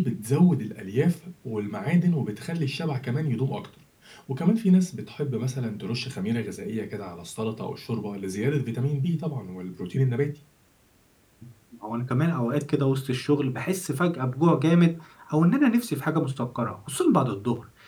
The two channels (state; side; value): identical; both; correlation 1.00